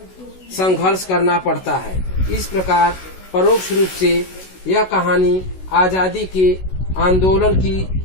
करना पड़ता है। इस प्रकार परोक्ष रूप से यह कहानी आजादी के आंदोलन की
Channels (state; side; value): late; right; 16 ms